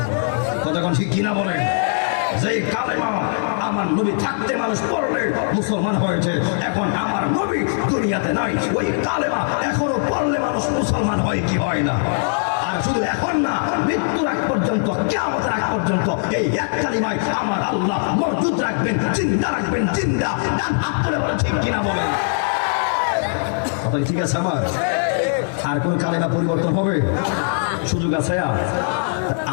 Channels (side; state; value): right; silent; digital silence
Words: কথা কোন ঠিক কিনা বলেন? যেই কালেমা আমার নবী থাকতে মানুষ পড়লে মুসলমান হয়েছে, এখন আমার নবী দুনিয়াতে নাই, ওই কালেমা এখনো পড়লে মানুষ মুসলমান হয় কি হয় না? আর শুধু এখন না, মৃত্যুর আগ পর্যন্ত, কিয়ামতের আগ পর্যন্ত এই এক কালিমায় আমার আল্লাহ মওজুদ রাখবেন, জিন্দা রাখবেন, জিন্দা। ডান হাত তুলে বলে ঠিক কিনা বলেন। কথা ঠিক আছে আমার? আর কোন কালেমা পরিবর্তন হবে? সুযোগ আছে?